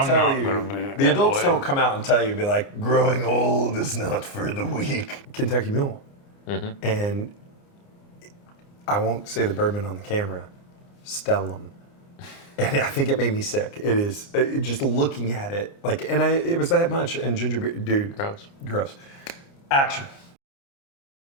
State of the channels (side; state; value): right; late; 29 ms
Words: tell not you. gonna be The that adults way. don't come out and tell you, be like, growing old is not for the weak. Kentucky Mule. Mm-hmm. And I won't say the bourbon on the camera. Stellum. And I think it made me sick. It is just looking at it, like, and it was that much. And ginger beer, dude, Gross. gross. Action.